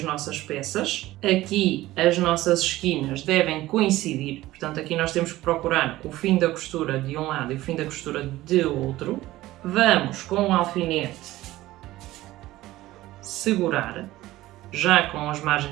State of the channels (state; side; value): quieter; left; 16.7 dB